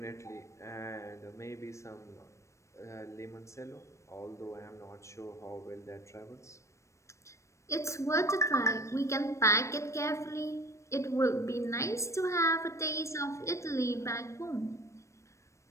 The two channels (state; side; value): late; right; 0.14 ms